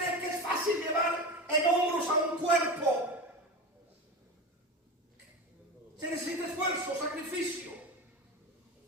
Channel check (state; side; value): normal; both; correlation 0.25